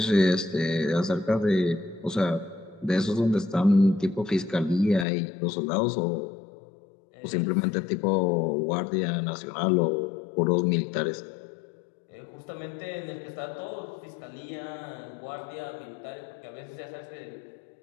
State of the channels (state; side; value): drops out; right; at 5.1 s